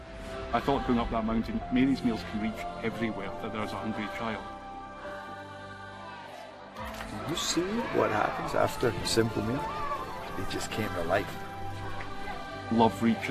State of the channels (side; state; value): both; identical; correlation 1.00